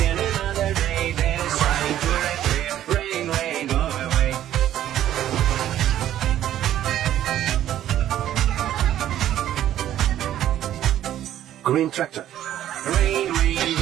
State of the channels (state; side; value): quieter; left; 12.0 dB